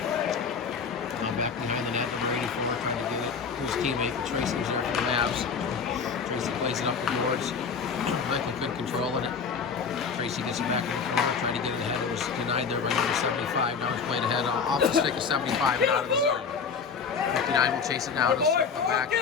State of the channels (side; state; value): right; quieter; 5.8 dB